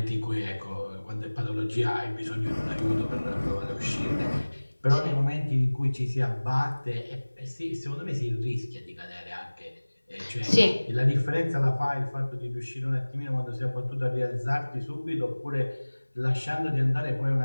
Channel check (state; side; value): inverted; both; correlation -1.00